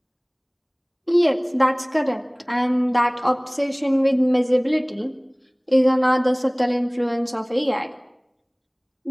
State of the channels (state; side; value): identical; both; correlation 1.00